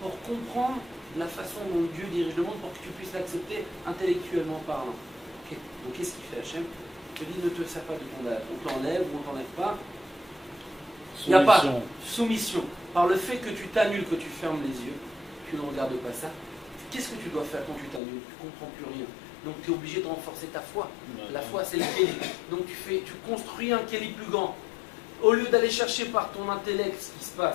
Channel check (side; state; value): right; drops out; at 18.0 s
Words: pour comprendre la façon dont Dieu dirige le monde, pour que tu puisses l'accepter intellectuellement parlant. Okay. Donc qu'est-ce qu'il fait Hachem? Il te dit ne te sers pas de ton da'at, on t'enlève ou on t'enlève pas. Il n'y a pas soumission. Par le fait que tu t'annules, que tu fermes les yeux, tu ne regardes pas ça, qu'est-ce que tu dois faire quand tu t'annules? Tu ne comprends plus rien. Donc tu es obligé de renforcer ta foi. La foi, c'est le kéli. Donc tu construis un kéli plus grand. Au lieu d'aller chercher par ton intellect ce qui se